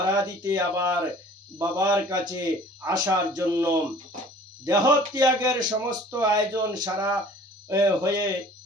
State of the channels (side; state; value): both; normal; correlation 0.49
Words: আবার বাবার কাছে আসার জন্য। দেহ ত্যাগের সমস্ত আয়োজন সারা হয়ে